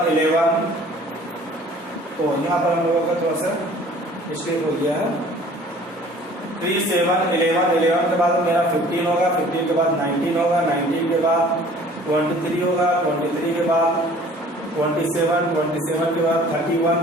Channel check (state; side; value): normal; both; correlation 0.50